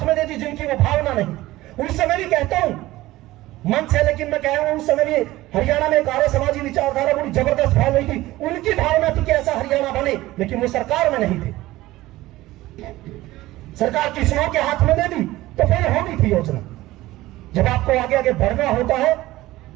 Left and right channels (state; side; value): quieter; left; 17.3 dB